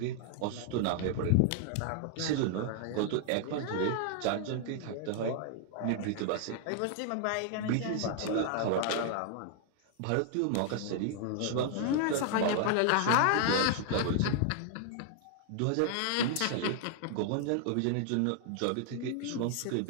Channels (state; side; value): different; both; correlation 0.00